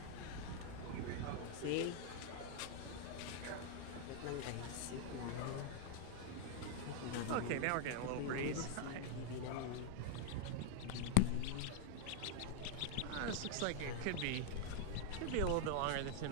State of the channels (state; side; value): different; both; correlation -0.01